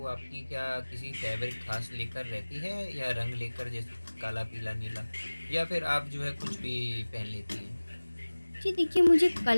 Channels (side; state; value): both; inverted; correlation -1.00